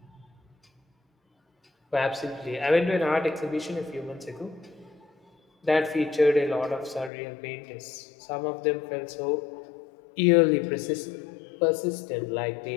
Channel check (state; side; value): drops out; right; at 7.1 s